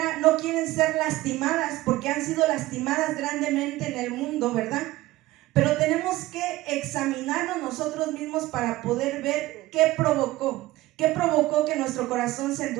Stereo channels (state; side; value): quieter; left; 17.7 dB